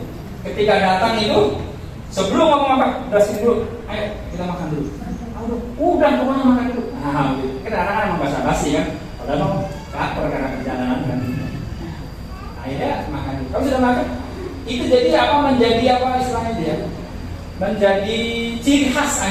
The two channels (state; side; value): identical; both; correlation 1.00